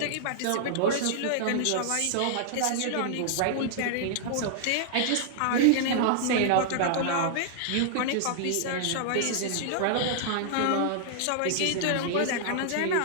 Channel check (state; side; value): different; both; correlation -0.01